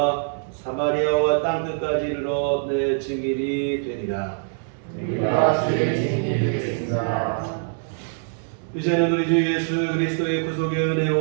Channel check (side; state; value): left; silent; digital silence